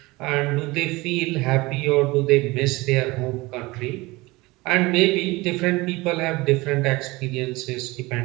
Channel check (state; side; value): quieter; left; 22.0 dB